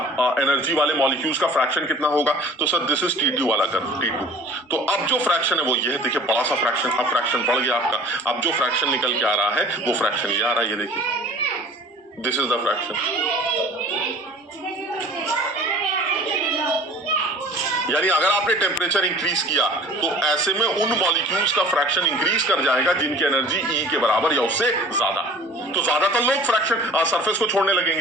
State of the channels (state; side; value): normal; both; correlation 0.45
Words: एनर्जी वाले मॉलिक्यूल्स का फ्रैक्शन कितना होगा? तो सर दिस इज T2 वाला कर्व, T2। तो अब जो फ्रैक्शन है वो ये है, देखिए बड़ा सा फ्रैक्शन, अब फ्रैक्शन बढ़ गया आपका। अब जो फ्रैक्शन निकल के आ रहा है वो फ्रैक्शन ये आ रहा है, ये देखिए, दिस इज द फ्रैक्शन। यानी अगर आपने टेम्परेचर इंक्रीज किया तो ऐसे में उन मॉलिक्यूल्स का फ्रैक्शन इंक्रीज कर जाएगा जिनकी एनर्जी E के बराबर या उससे ज्यादा। तो ज्यादातर लोग फ्रैक्शन सरफेस को छोड़ने